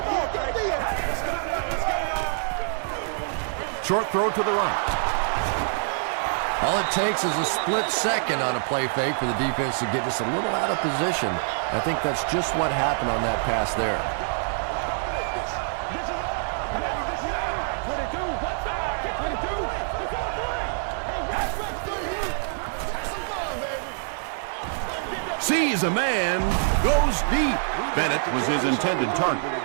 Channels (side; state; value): left; silent; digital silence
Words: Short throw to the right. All it takes is a split second on a play fake for the defense to get just a little out of position. I think that's just what happened on that pass there. Sees a man, goes deep. Bennett was his intended target.